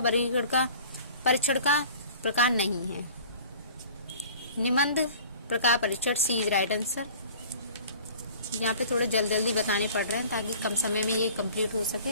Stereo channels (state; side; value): inverted; both; correlation -0.46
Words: वर्गीकरण का परीक्षण का प्रकार नहीं है? निबंध प्रकार परीक्षण। सी इज राइट आंसर। यहाँ पे थोड़ा जल्दी बताने पड़ रहे हैं ताकि कम समय में ये कंप्लीट हो